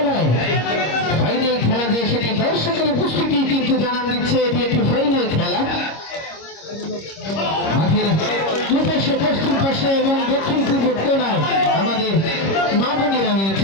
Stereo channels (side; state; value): right; late; 26 ms